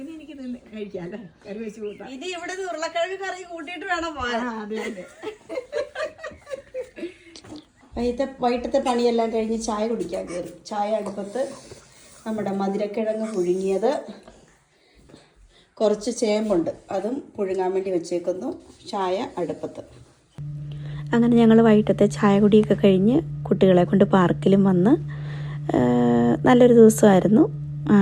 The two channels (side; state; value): both; identical; correlation 1.00